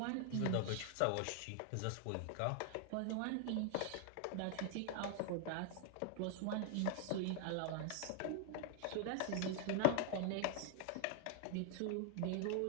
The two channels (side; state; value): both; different; correlation 0.00